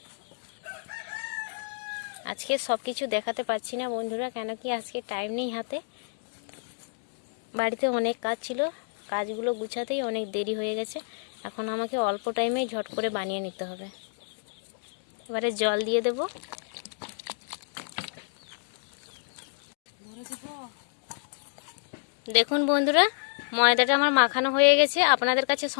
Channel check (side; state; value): right; silent; digital silence